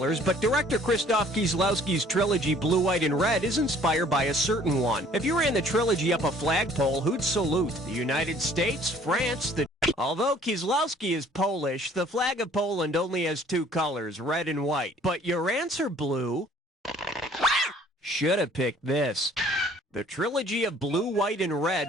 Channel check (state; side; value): normal; both; correlation 0.56